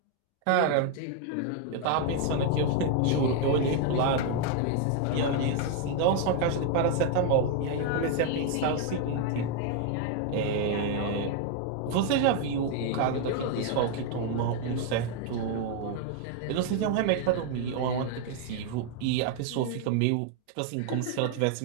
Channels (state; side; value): different; both; correlation 0.00